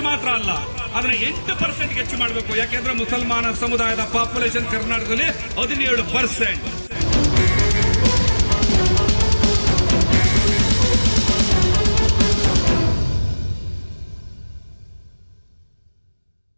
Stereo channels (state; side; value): inverted; both; correlation -1.00